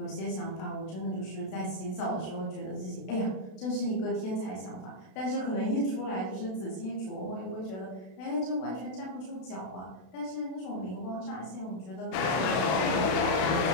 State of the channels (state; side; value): late; right; 32 ms